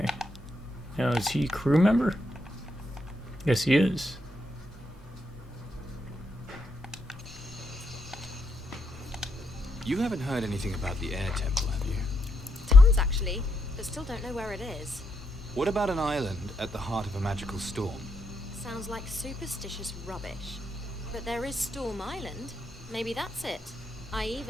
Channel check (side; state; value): both; normal; correlation 0.80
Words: Now, is he a crew member? Yes, he is. You haven't heard anything about the air temple, have you? Tons, actually, but still don't know where it is. What about an island at the heart of a magical storm? Sounds like superstitious rubbish. But there is Storm Island. Maybe that's it. I